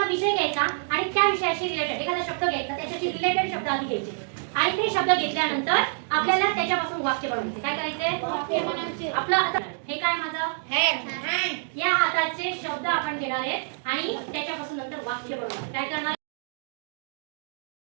विषय घ्यायचा आणि त्या विषयाशी रिलेटेड एखादा शब्द घ्यायचा, त्याच्याशी रिलेटेड शब्द आधी घ्यायचे आणि ते शब्द घेतल्यानंतर आपल्याला त्याच्यापासून वाक्य बनवायचे. काय करायचे? आपलं आता हे काय माझं हँड. या हाताचे शब्द आपण घेणार आहेत आणि त्याच्यापासून नंतर वाक्य बनवणार. काय करणार?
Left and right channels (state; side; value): silent; left; digital silence